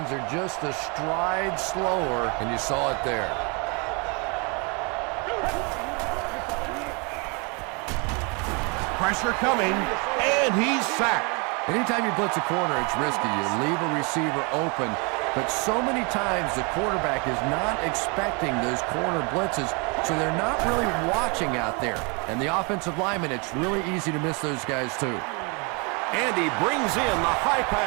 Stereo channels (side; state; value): left; quieter; 31.9 dB